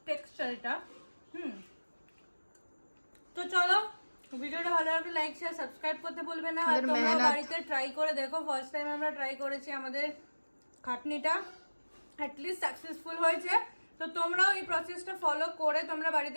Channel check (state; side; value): inverted; both; correlation -1.00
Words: টেক্সচার এটা। তো চলো, ভিডিওটা ভালো লাগলে লাইক শেয়ার সাবস্ক্রাইব করতে ভুলবে না। আর আমাদের তোমরা মেহনত। বাড়িতে ট্রাই করে দেখো। ফার্স্ট টাইম আমরা ট্রাই করেছি, আমাদের খাটনিটা অ্যাটলিস্ট সাকসেসফুল হয়েছে। তো তোমরাও এই প্রসেসটা ফলো করে তোমরা